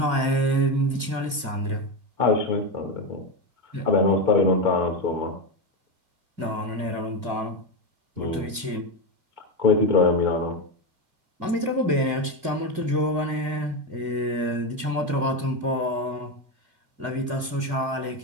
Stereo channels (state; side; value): late; left; 2.3 ms